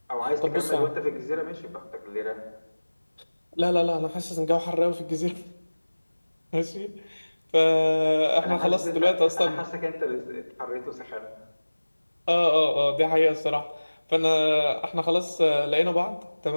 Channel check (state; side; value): inverted; both; correlation -1.00